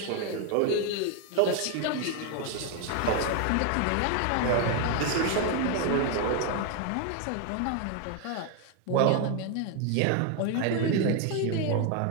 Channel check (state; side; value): different; both; correlation 0.01